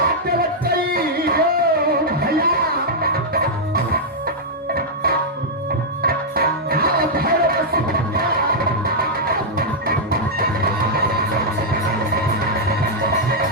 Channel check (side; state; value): both; normal; correlation -0.06